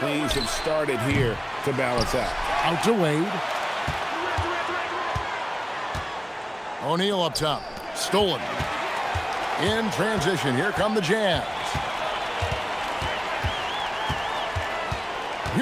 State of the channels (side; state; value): both; identical; correlation 1.00